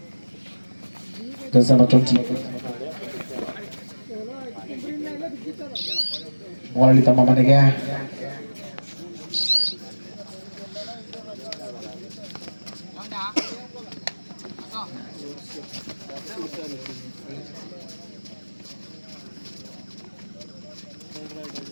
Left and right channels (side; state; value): both; inverted; correlation -1.00